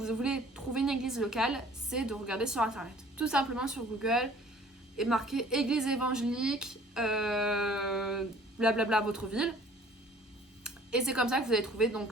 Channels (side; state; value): both; normal; correlation 0.52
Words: trouver une église locale, c'est de regarder sur Internet. Tout simplement sur Google et marquer église évangélique, blablabla, votre ville. Et c'est comme ça que vous allez trouver.